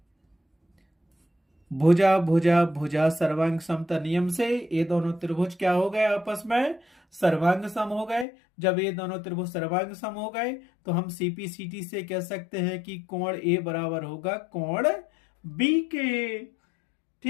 भुजा सर्वांग समता नियम से ये दोनों त्रिभुज क्या हो गए, आपस में सर्वांग सम हो गए। जब ये दोनों त्रिभुज सर्वांग सम हो गए तो हम सीपीसीटी से कह सकते हैं कि कोण ए बराबर होगा कोण बी के।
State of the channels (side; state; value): right; drops out; at 8.2 s